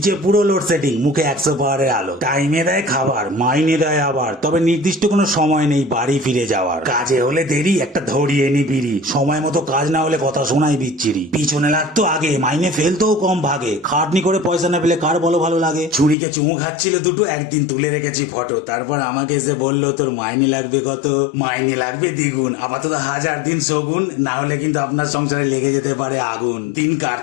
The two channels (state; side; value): drops out; right; at 16.2 s